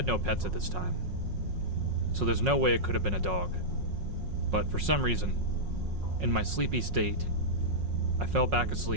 no pets at this time, so there's no way it could have been a dog. But for some reason, in my sleepy state, I fell back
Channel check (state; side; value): late; left; 5.5 ms